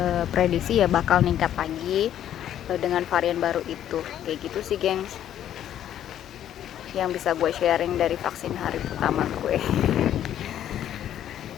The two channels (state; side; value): quieter; right; 10.9 dB